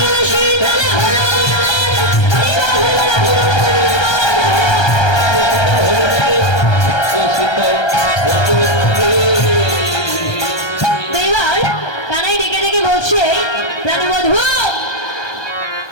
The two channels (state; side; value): late; right; 1.3 ms